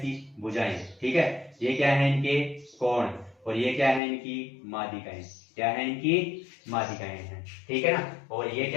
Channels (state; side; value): drops out; right; at 4.0 s